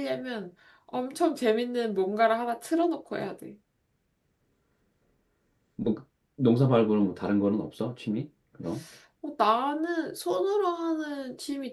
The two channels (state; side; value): identical; both; correlation 1.00